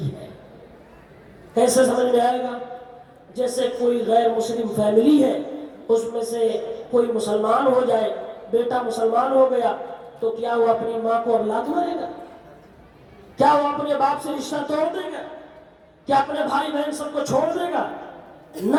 ہے۔ کیسے سمجھ میں آئے گا؟ جیسے کوئی غیر مسلم فیملی ہے، اس میں سے کوئی مسلمان ہو جائے، بیٹا مسلمان ہو گیا، تو کیا وہ اپنی ماں کو اب لات مارے گا؟ کیا وہ اپنے باپ سے رشتہ توڑ دے گا؟ کیا اپنے بھائی بہن سب کو چھوڑ دے گا؟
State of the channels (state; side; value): identical; both; correlation 1.00